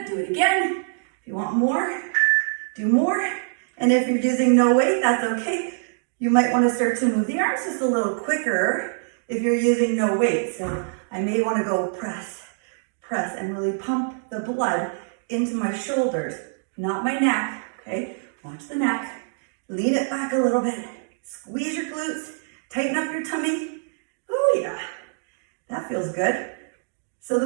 do it again. If you want more, do more. And if you're using no weight, that's okay. You might want to start to move the arms just a little quicker if you're using no weight. So I may want to go press, press, and really pump the blood into my shoulders, not my neck, okay? Watch the neck. Lean it back a little bit. Squeeze your glutes. Tighten up your tummy. Oh yeah, that feels good. So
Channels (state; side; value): silent; left; digital silence